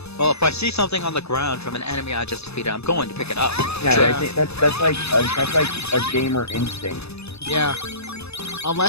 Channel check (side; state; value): right; late; 0.79 ms